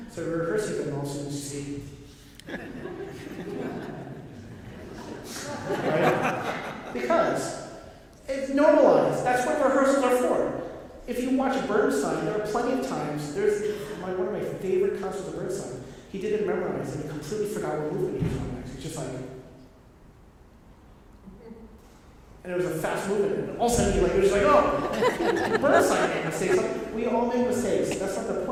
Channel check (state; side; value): identical; both; correlation 1.00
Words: So rehearsing them also you see. Right? Because it's normalized. That's what rehearsals are for. If you watch Bernstein, there are plenty of times. There's one of my favorite concerts of Bernstein. He didn't memorize and he completely forgot what movement he was on next. He's just like, and it was a fast movement, and all of a sudden he was just like, oh, Bernstein made mistakes. We all make mistakes. That's not the